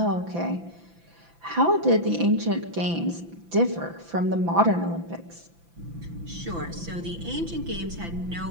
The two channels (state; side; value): late; left; 5.9 ms